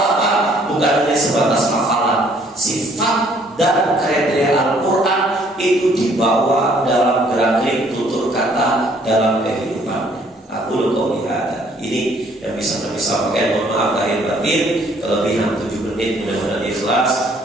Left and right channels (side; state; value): both; normal; correlation 0.62